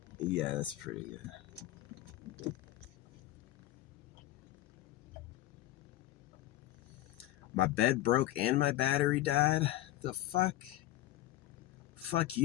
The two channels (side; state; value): right; quieter; 15.3 dB